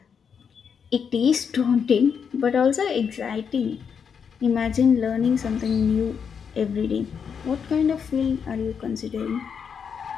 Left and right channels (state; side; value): quieter; right; 6.8 dB